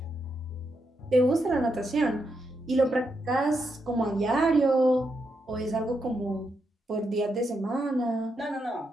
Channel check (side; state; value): both; normal; correlation 0.82